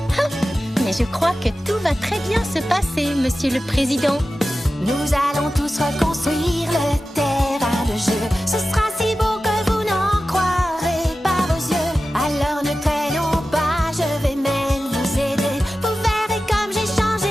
Mais je crois que tout va très bien se passer, Monsieur le Président. Nous allons tous reconstruire le terrain de jeu. Ce sera si beau que vous n'en croirez pas vos yeux. Alors ne traînons pas, je vais même vous aider. Vous verrez comme j'ai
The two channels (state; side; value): normal; both; correlation 0.94